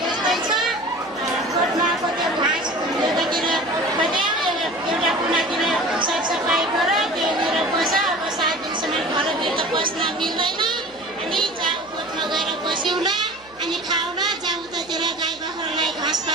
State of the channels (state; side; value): noise; right; hum, 28 dB below the sound